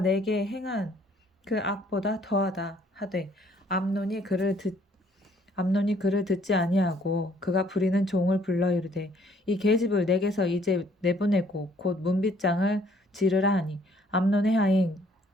행한 그 악보다 더하다 하되 암논이 그를 듣지 아니하고 그가 부리는 종을 불러 이르되 이 계집을 내게서 이제 내보내고 곧 문빗장을 지르라 하니 암논의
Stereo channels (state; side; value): normal; both; correlation 0.62